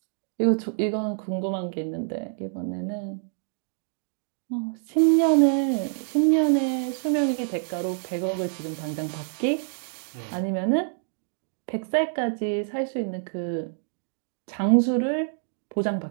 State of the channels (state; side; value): silent; left; 61 dB below the other